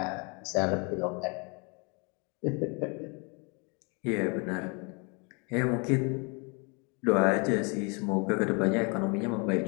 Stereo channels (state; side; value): quieter; right; 33.0 dB